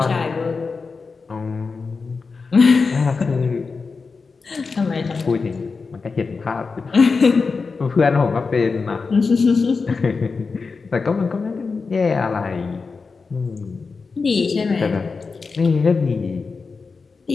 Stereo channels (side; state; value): right; quieter; 4.6 dB